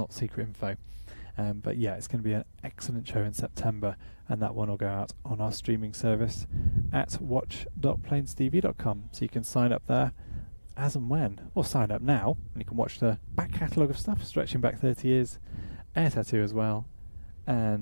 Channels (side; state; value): both; inverted; correlation -1.00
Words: secret info. But yeah, it's going to be an excellent show in September, and that one will go out on our streaming service at watch.plainstv.com. So you can sign up there as and when, or sign up now, and you can watch the back catalogue of stuff stretching back 30 years, air tattoo as well,